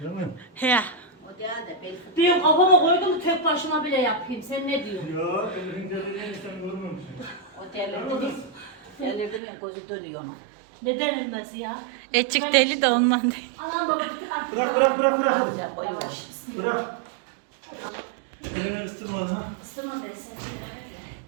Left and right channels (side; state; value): left; drops out; at 9.4 s